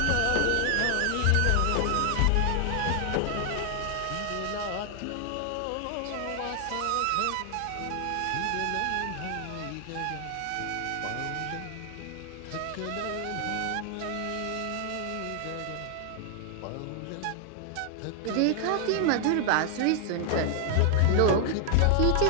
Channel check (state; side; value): different; both; correlation 0.00